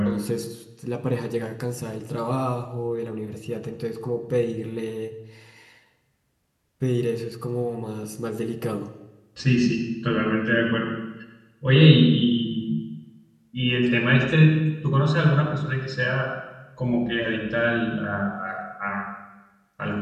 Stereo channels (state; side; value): identical; both; correlation 1.00